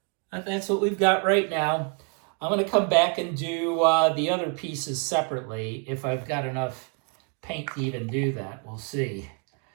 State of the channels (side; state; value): left; quieter; 35.8 dB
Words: But that's what we've got right now. I'm going to come back and do the other pieces separately if I've got enough paint to even do that. We'll see.